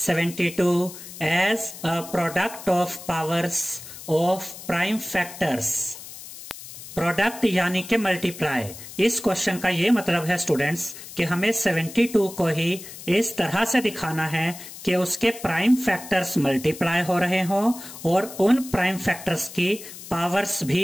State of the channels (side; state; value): left; noise; hiss, 14 dB below the sound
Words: 72 as a product of powers of prime factors. Product यानी कि मल्टीप्लाई। इस क्वेश्चन का ये मतलब है स्टूडेंट्स कि हमें 72 को ही इस तरह से दिखाना है कि उसके प्राइम फैक्टर्स मल्टीप्लाई हो रहे हो और उन प्राइम फैक्टर्स की पावर्स